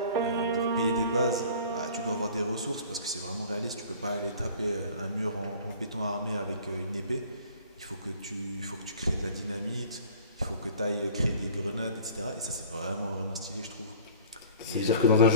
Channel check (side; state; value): both; inverted; correlation -0.46